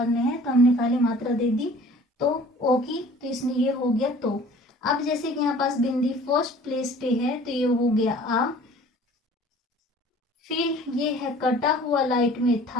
में है तो हमने खाली मात्रा दे दी तो ओ की, तो इसमें ये हो गया तो। अब जैसे कि यहाँ पास बिंदी फर्स्ट प्लेस पे है तो ये हो गया आ। फिर ये है कटा हुआ लाइट में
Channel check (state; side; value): normal; both; correlation 0.49